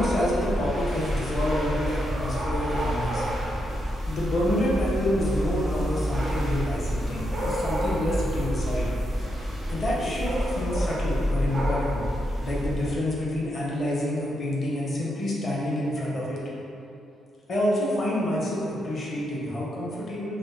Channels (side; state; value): both; normal; correlation 0.82